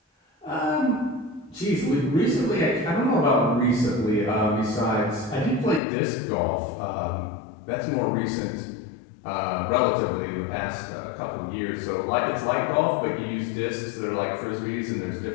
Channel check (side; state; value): right; drops out; at 5.8 s